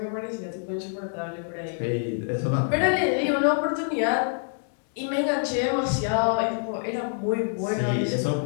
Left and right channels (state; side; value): silent; right; digital silence